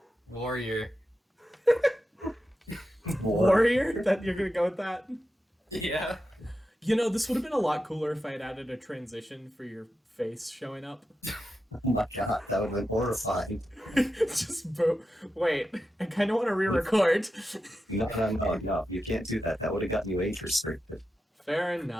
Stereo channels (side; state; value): both; normal; correlation 0.89